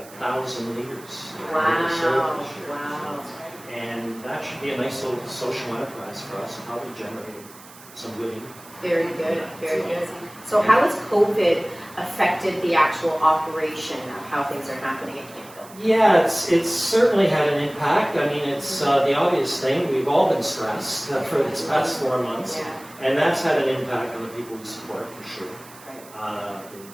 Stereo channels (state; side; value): noise; right; hiss, 21 dB below the sound